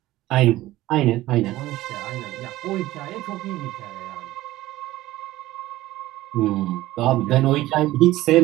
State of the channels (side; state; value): left; quieter; 16.5 dB